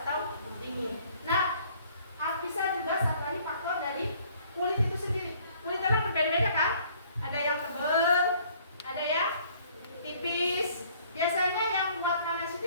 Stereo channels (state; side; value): inverted; both; correlation -0.58